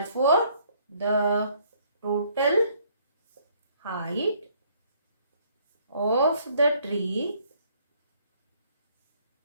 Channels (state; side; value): inverted; both; correlation -0.64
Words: the total height of the tree